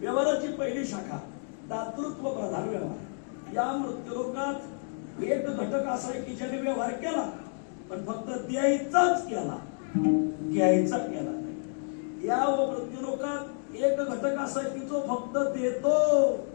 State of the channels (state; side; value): silent; right; 58 dB below the other